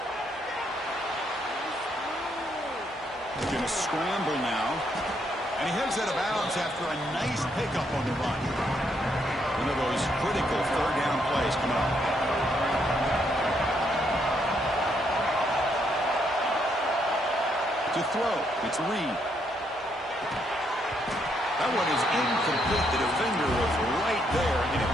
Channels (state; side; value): normal; both; correlation 0.75